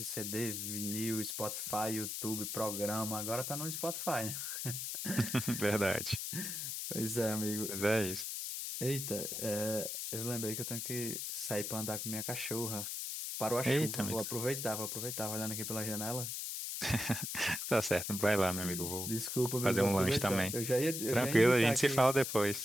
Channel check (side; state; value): left; noise; hiss, 4 dB below the sound